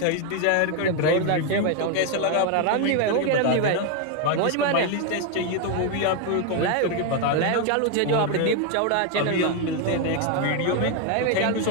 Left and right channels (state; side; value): different; both; correlation 0.01